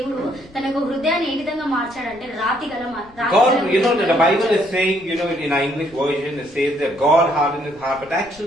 తన యొక్క హృదయాన్ని ఏ విధంగా మార్చాడంటే రాతి గల God, you know, the Bible is saying, you know, in our English version, it says that God hardened his heart, but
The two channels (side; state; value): left; noise; rumble, 25 dB below the sound